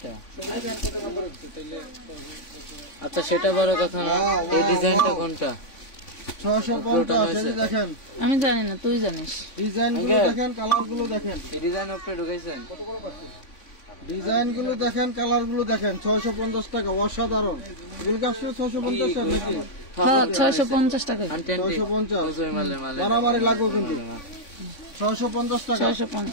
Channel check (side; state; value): right; late; 3.5 ms